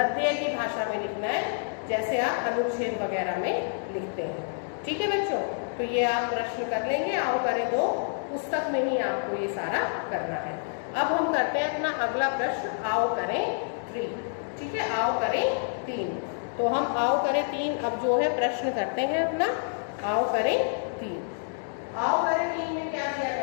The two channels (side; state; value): right; silent; digital silence